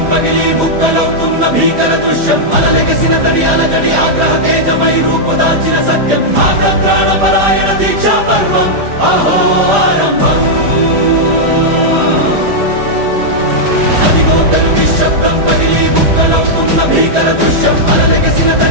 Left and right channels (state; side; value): late; left; 5.0 ms